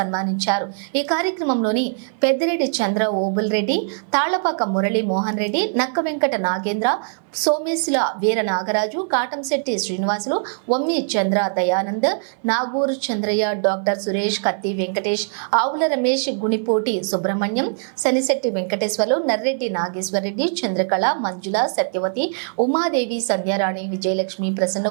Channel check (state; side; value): silent; left; 58 dB below the other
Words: ఈ కార్యక్రమంలోని పెద్దిరెడ్డి చంద్ర ఓబుల్ రెడ్డి, తాళ్లపాక మురళీ మోహన్ రెడ్డి, నక్క వెంకట నాగేంద్ర, సోమేశుల వీర నాగరాజు, కాటంశెట్టి శ్రీనివాసులు, వమ్మి చంద్ర దయానంద్, నాగూరు చంద్రయ్య, డాక్టర్ సురేష్, కత్తి వెంకటేష్, ఆవుల రమేష్, గుణిపోటి సుబ్రహ్మణ్యం, శనిశెట్టి వెంకటేశ్వర్లు, నర్రెడ్డి నాగేశ్వరరెడ్డి, చంద్రకళ, మంజుల, సత్యవతి, ఉమాదేవి, సంధ్యారాణి, విజయలక్ష్మి,